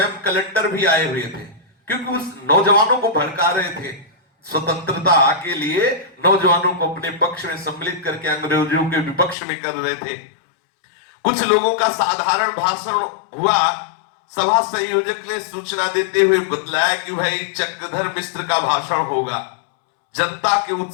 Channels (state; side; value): drops out; right; at 9.3 s